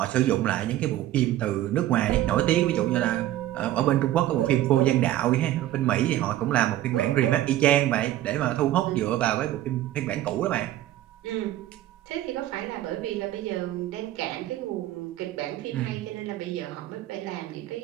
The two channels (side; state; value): left; quieter; 13.9 dB